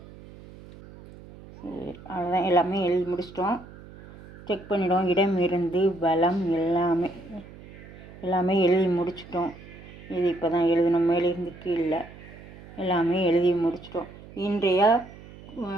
சரி, அவ்வளோதான். எல்லாமே எழுதி முடிச்சிட்டோம். செக் பண்ணிவிடுவோம். இடம் இருந்து பலம் எல்லாமே எழுதி முடிச்சிட்டோம். இது இப்போ தான் எழுதணும். மேலிருந்து கீழே எல்லாமே எழுதி முடிச்சிட்டோம். இன்றைய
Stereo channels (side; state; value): right; noise; hum, 18 dB below the sound